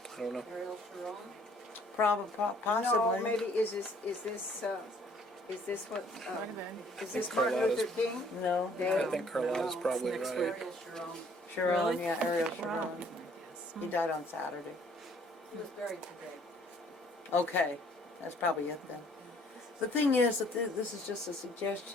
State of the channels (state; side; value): normal; both; correlation 0.60